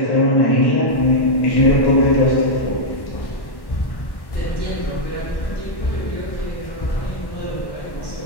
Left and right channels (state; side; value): late; right; 1.1 ms